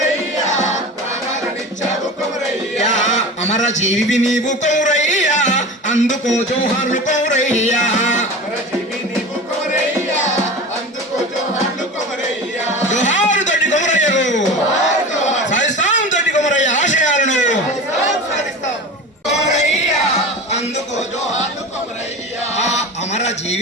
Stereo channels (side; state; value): both; normal; correlation 0.31